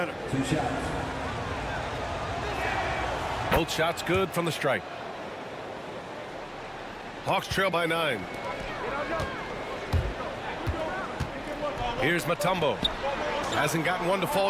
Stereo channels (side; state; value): both; identical; correlation 1.00